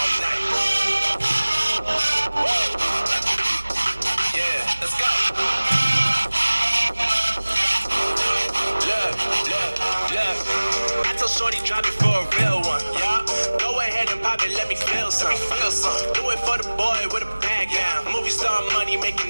night. Woo. Yeah, let's go. Look. I told Shorty drop it for a real one. Yeah. Go ahead and pop it, let me feel some. Do it for the boy with a bag down. Movie star money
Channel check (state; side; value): inverted; both; correlation -1.00